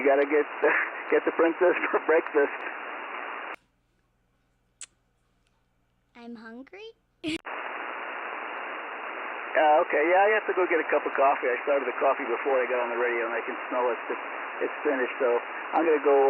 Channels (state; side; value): identical; both; correlation 1.00